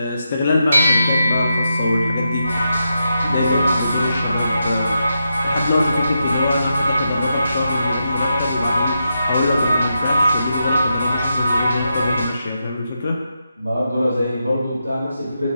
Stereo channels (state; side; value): inverted; both; correlation -0.85